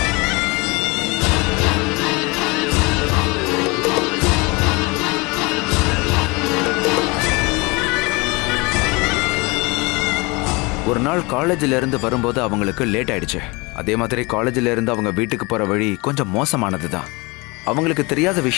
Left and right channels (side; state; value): right; quieter; 26.4 dB